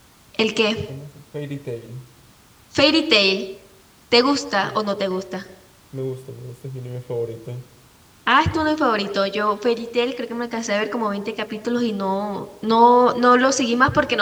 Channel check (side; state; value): both; identical; correlation 1.00